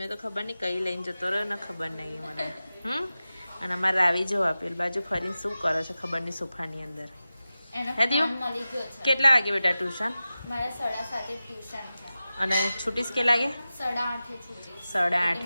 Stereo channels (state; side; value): inverted; both; correlation -0.95